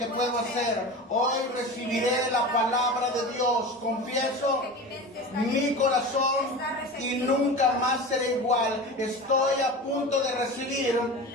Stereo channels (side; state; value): both; normal; correlation 0.31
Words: puedo hacer. Hoy recibiré la palabra de Dios. Confieso mi corazón y nunca más seré igual. Estoy a punto de recibir